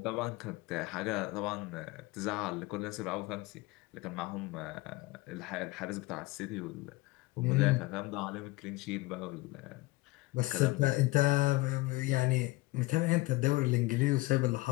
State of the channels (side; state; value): right; quieter; 20.9 dB